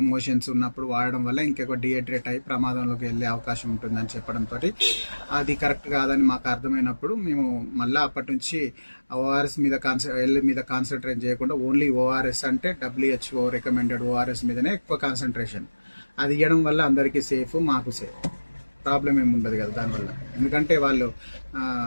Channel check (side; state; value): both; inverted; correlation -1.00